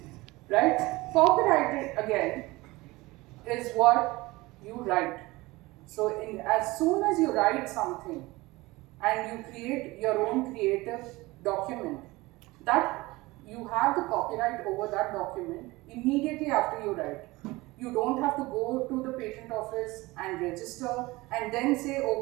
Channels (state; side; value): quieter; left; 21.2 dB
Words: right? Copyrighted again is what you write. So as soon as you write something and you create your own creative document, that you have the copyright over that document immediately after you write. You don't have to go to the patent office and register and then say,